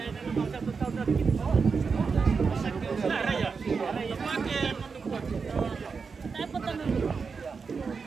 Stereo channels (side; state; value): left; quieter; 5.2 dB